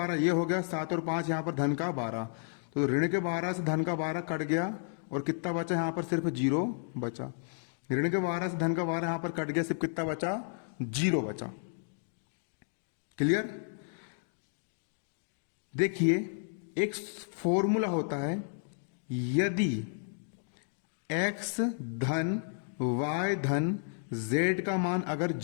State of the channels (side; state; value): right; silent; digital silence